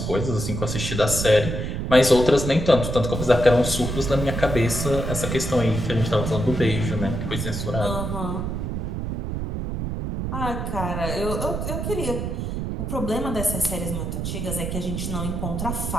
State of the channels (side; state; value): right; noise; rumble, 3 dB below the sound